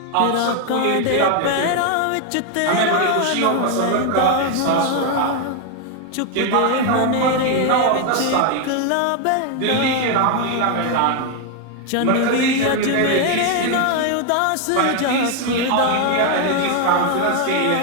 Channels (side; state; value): both; different; correlation 0.01